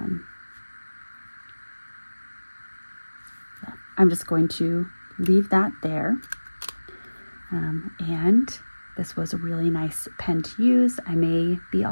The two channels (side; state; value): both; inverted; correlation -1.00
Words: I'm just going to leave that there, and this was a really nice pen to use. I may be